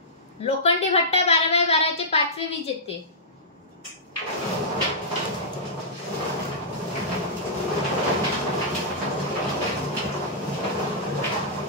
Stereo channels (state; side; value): normal; both; correlation -0.15